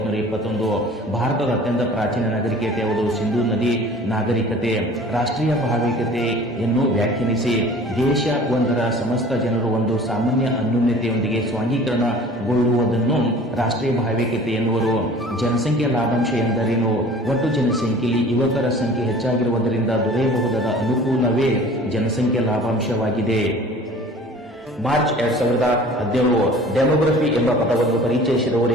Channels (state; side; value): normal; both; correlation 0.46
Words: ಭಾರತದ ಅತ್ಯಂತ ಪ್ರಾಚೀನ ನಾಗರಿಕತೆ ಯಾವುದು? ಸಿಂಧೂ ನದಿ ನಾಗರಿಕತೆ. ರಾಷ್ಟ್ರೀಯ ಭಾವೈಕ್ಯತೆಯನ್ನು ವ್ಯಾಖ್ಯಾನಿಸಿ. ದೇಶ ಒಂದರ ಸಮಸ್ತ ಜನರು ಒಂದು ಸಾಮಾನ್ಯ ಅನ್ಯೋನ್ಯತೆಯೊಂದಿಗೆ ಸ್ವಾಂಗೀಕರಣಗೊಳ್ಳುವುದನ್ನು ರಾಷ್ಟ್ರೀಯ ಭಾವೈಕ್ಯತೆ ಎನ್ನುವರು. ಜನಸಂಖ್ಯಾ ಲಾಭಾಂಶ ಎಂದರೇನು? ಒಟ್ಟು ಜನಸಂಖ್ಯೆಯಲ್ಲಿ ಯುವಕರ ಸಂಖ್ಯೆ ಹೆಚ್ಚಾಗಿರುವುದರಿಂದ ದೊರೆಯಬಹುದಾದ ಅನುಕೂಲವೇ ಜನಸಂಖ್ಯಾ ಲಾಭಾಂಶವಾಗಿದೆ. ಮಾರ್ಚ್ 2017 ಡೆಮೋಗ್ರಫಿ ಎಂಬ ಪದವನ್ನು ಪರಿಚಯಿಸಿದವರು